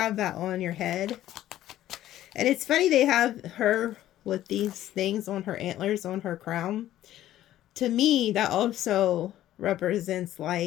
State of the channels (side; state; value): right; quieter; 13.3 dB